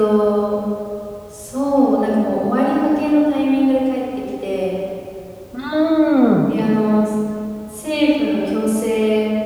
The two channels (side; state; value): both; identical; correlation 1.00